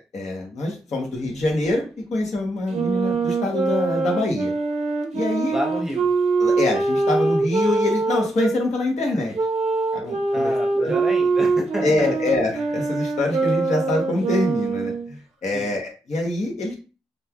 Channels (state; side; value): normal; both; correlation 0.80